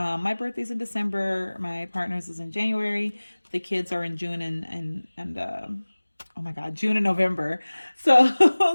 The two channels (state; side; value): inverted; both; correlation -1.00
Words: birthday's in December. My partner's is in January. The kids are in June and oh my God, June and November. So